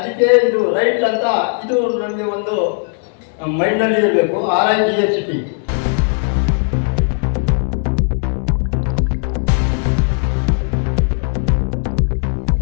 ಇದು ರೈಟ್ ಅಂತ ಇದು ನಮಗೆ ಒಂದು ಮೈಂಡ್ನಲ್ಲಿ ಇರಬೇಕು. RIGHT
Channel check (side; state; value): right; silent; 58 dB below the other